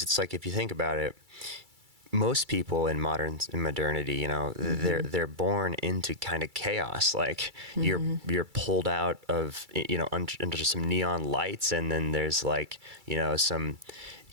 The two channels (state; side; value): late; left; 2.3 ms